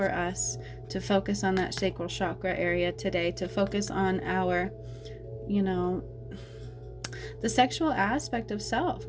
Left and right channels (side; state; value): both; identical; correlation 1.00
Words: us to focus on that sacral chakra area today, to focus on our, you know, the sexual aspect of self,